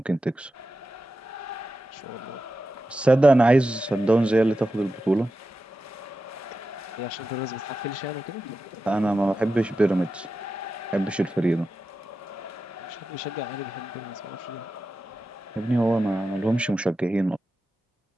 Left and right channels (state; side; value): normal; both; correlation 0.92